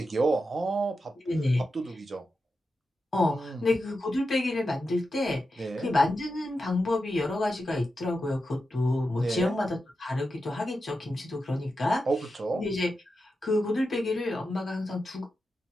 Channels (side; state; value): both; normal; correlation 0.89